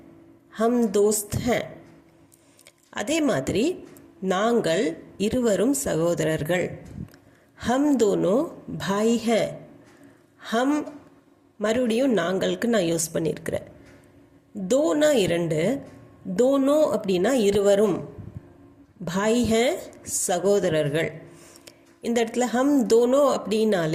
ஹம் தோஸ்த் ஹே. அதே மாதிரி நாங்கள் இருவரும் சகோதரர்கள், ஹம் தோனோ பாய் ஹே. ஹம் மறுபடியும் நாங்களுக்கு நான் யூஸ் பண்ணியிருக்கிறேன். தோனா இரண்டு, தோனோ அப்படின்னா இருவரும், பாய் ஹே சகோதரர்கள். இந்த இடத்துல ஹம் தோனோ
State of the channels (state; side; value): identical; both; correlation 1.00